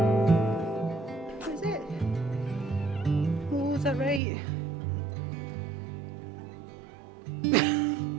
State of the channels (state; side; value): drops out; left; at 4.2 s